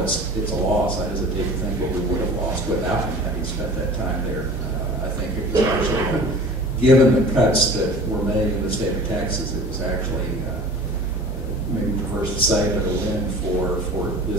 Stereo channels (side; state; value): both; normal; correlation 0.41